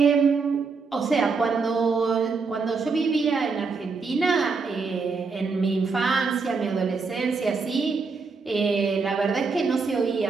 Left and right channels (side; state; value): left; quieter; 4.6 dB